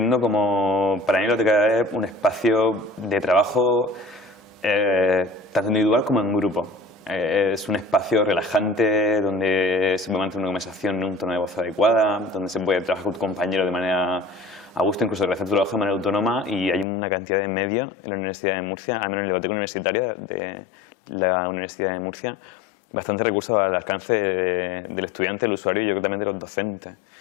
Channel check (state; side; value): drops out; right; at 16.9 s